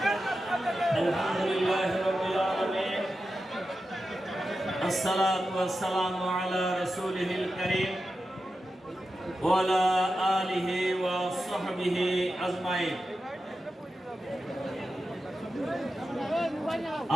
আলহামদুলিল্লাহ রাব্বিল আলামিন, আসসালাতু ওয়াসসালামু আলা রাসূলিহিল কারীম ওয়া আলা আলিহি ওয়া সাহবিহি আজমাইন।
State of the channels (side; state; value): both; normal; correlation 0.91